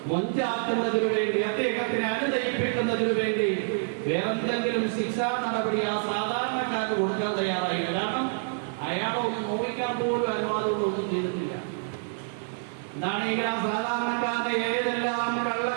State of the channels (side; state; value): left; silent; digital silence